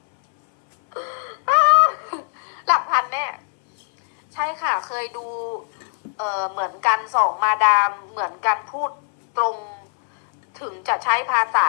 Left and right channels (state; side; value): silent; right; 65 dB below the other